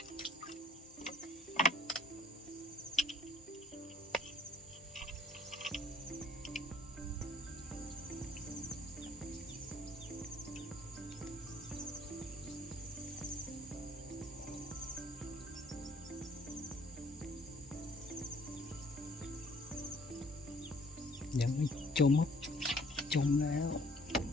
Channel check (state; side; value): normal; both; correlation 0.59